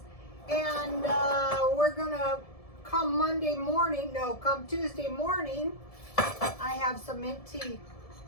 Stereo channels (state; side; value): late; right; 1.7 ms